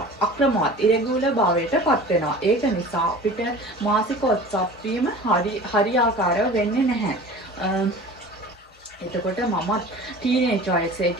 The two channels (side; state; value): both; normal; correlation 0.40